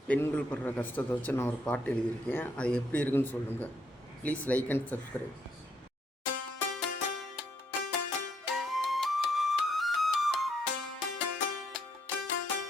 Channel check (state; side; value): normal; both; correlation 0.73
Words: பெண்கள் படுற கஷ்டத்தை வச்சு நான் ஒரு பாட்டு எழுதியிருக்கேன். அது எப்படி இருக்குன்னு சொல்லுங்கள். Please like and subscribe.